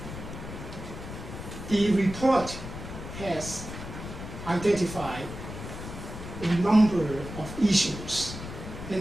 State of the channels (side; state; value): left; noise; rumble, 9 dB below the sound